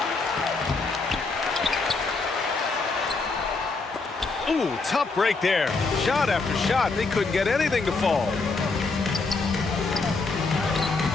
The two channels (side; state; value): right; quieter; 3.9 dB